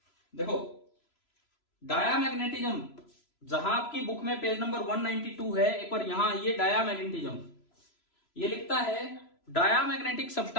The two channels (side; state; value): right; late; 3.0 ms